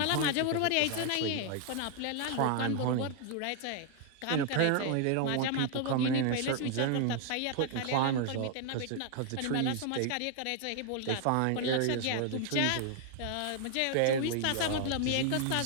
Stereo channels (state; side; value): different; both; correlation 0.00